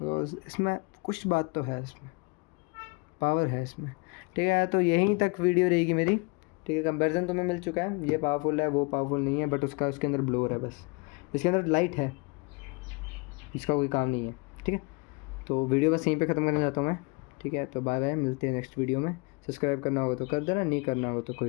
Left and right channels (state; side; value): quieter; right; 29.1 dB